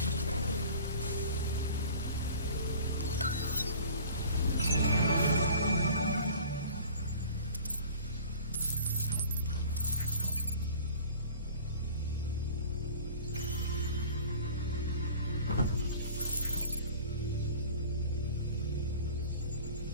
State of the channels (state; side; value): inverted; both; correlation -0.43